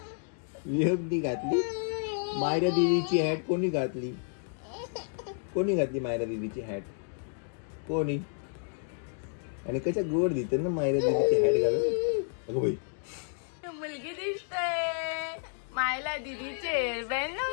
विहबनी घातली. मायरा दीदीची हॅट कोणी घातली? कोणी घातली मायरा दीदीची हॅट? कोणी? आणि कशा गोड दिसते ना मायरा दीदीची हॅट घालून. अगं बाई मुलगी दिसते. मायला दीदीचे हेअरबँड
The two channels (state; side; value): silent; right; 57 dB below the other